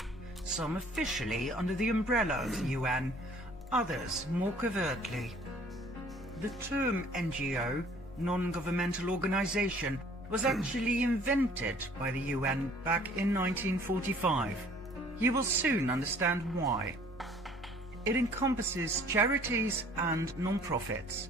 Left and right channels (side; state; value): both; normal; correlation 0.55